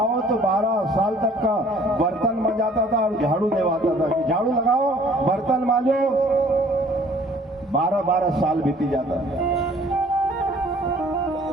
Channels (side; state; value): both; normal; correlation 0.55